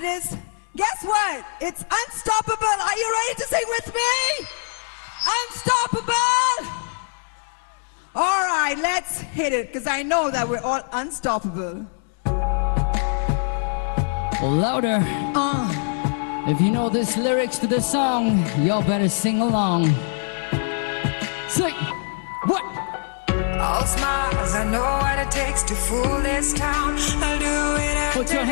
is, guess what? It's Unstoppable. Are you ready to sing with me? Unstoppable! All right, let's hit it, because I know that we're all unstoppable. Louder. If you know this lyrics to the song, y'all better sing along. Sing. What? All smiles, I know what it takes to fool this town. I'll do it after. Put your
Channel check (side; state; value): right; silent; 63 dB below the other